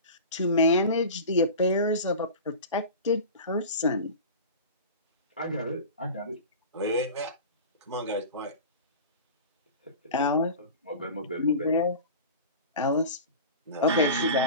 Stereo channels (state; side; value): inverted; both; correlation -0.33